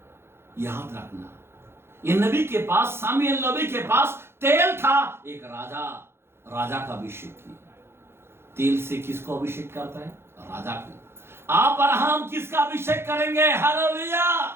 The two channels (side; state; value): left; late; 0.12 ms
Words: याद रखना, ये नबी के पास, सामुएल नबी के पास तेल था। एक राजा का अभिषेक किया। तेल से किसको अभिषेक करता है? राजा को। आप और हम किसका अभिषेक करेंगे? हालेलुया।